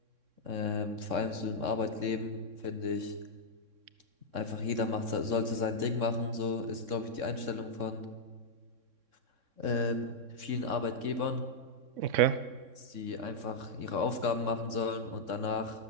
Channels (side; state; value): left; late; 3.6 ms